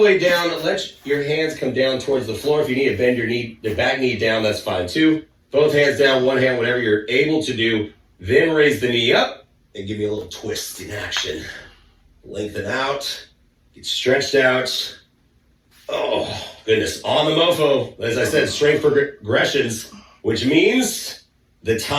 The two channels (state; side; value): identical; both; correlation 1.00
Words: way down. Let your hands come down towards the floor. If you need to bend your back knee down, that's fine too. Both hands down, one hand, whatever you're able to do. Then raise the knee up and give me a little twist in action. Lengthen out, get stretched out. Oh, goodness. On the mofo, as I said, strength progressions, which means the